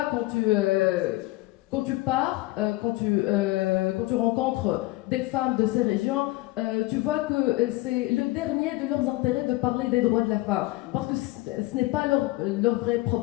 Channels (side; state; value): right; quieter; 19.6 dB